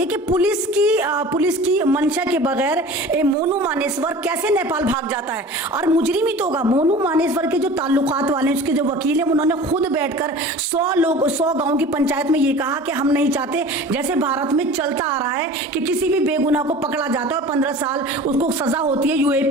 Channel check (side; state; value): both; normal; correlation 0.40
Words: कि पुलिस की मंशा के बगैर मोनू मानेसर कैसे नेपाल भाग जाता है? और मुजरिम ही तो होगा। मोनू मानेसर के जो ताल्लुकात वाले उसके जो वकील हैं उन्होंने खुद बैठकर 100 गांव की पंचायत में ये कहा कि हम नहीं चाहते, जैसे भारत में चलता आ रहा है कि किसी भी बेगुनाह को पकड़ा जाता है और 15 साल उसको सजा होती है,